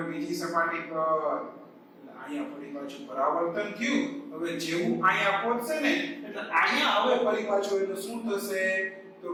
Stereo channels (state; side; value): identical; both; correlation 1.00